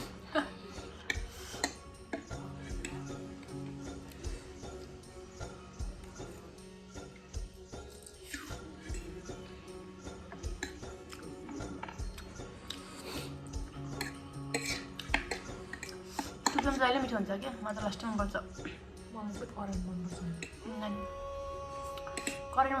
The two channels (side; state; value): both; identical; correlation 1.00